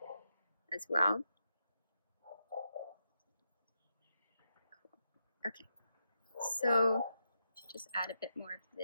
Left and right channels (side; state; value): both; inverted; correlation -0.84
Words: as well. Okay, so just add a bit more of